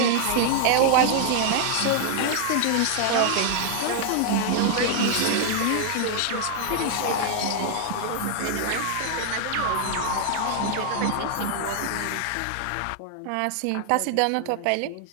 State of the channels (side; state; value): both; different; correlation 0.00